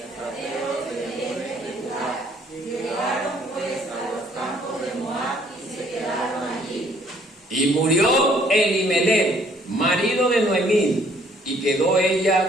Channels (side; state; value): both; normal; correlation 0.62